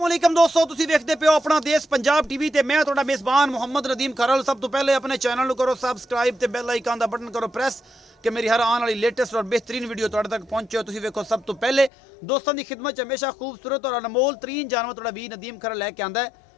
अस्सलामुअलैकुम दोस्तों, तुसी देखते पे हो अपना देश पंजाब टीवी ते मैं तुहाडा मेज़बान मुहम्मद नदीम खरल। सब तो पहले अपने चैनल को करो सबसक्राइब ते बेल आइकन का बटन करो प्रेस कि मेरी हर आने वाली लेटेस्ट और बेहतरीन वीडियो तुहाडे तक पहुंचे। तुसी देखो सब तो पहले दोस्तों की खिदमत हमेशा खूबसूरत और अनमोल तरीन जानवर तुहाडा वी नदीम खरल लैके आंदा है।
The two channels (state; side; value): drops out; right; at 11.9 s